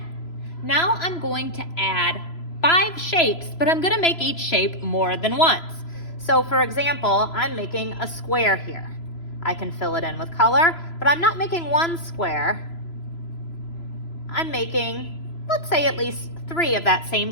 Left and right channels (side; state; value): right; late; 3.0 ms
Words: Now I'm going to add 5 shapes, but I'm going to make each shape more than once. So for example, I'm making a square here. I can fill it in with color, but I'm not making one square. I'm making, let's say, at least 3 of that same